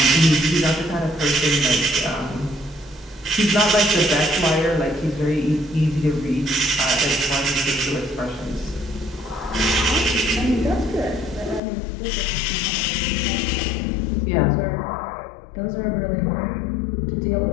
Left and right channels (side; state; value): right; drops out; at 11.6 s